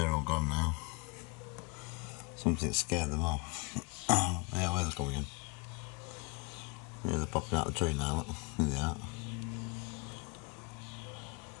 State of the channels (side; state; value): right; quieter; 30.2 dB